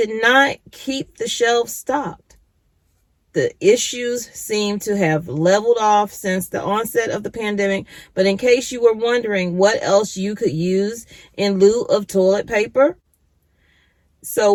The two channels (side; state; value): both; identical; correlation 1.00